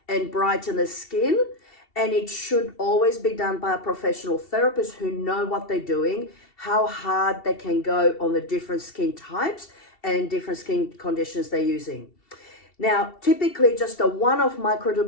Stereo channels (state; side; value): late; right; 2.7 ms